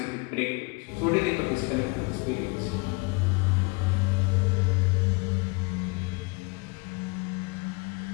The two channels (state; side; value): quieter; right; 28.5 dB